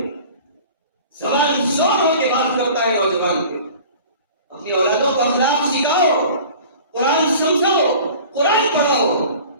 زبان زور ہو کے بات کرتا ہے نوجوان کے. اپنی اولادوں کو اخلاق سکھاؤ، قرآن سمجھاؤ، قرآن پڑھاؤ.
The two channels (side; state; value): both; inverted; correlation -0.43